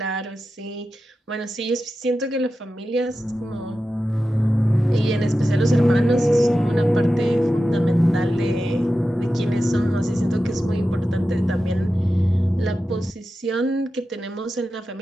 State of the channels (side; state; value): both; normal; correlation 0.92